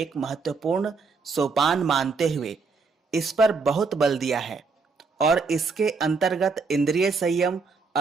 महत्वपूर्ण सोपान मानते हुए इस पर बहुत बल दिया है और इसके अंतर्गत इंद्रिय संयम,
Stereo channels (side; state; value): left; quieter; 4.6 dB